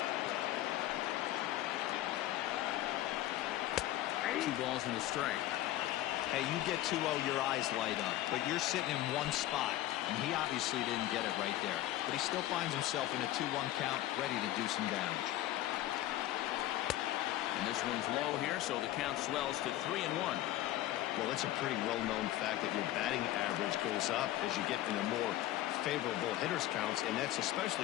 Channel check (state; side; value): quieter; right; 14.7 dB